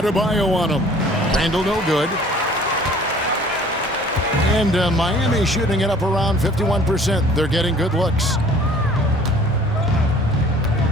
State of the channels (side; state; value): both; normal; correlation 0.51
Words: on him. Randle no good. And Miami shooting it up around 51%. They're getting good looks.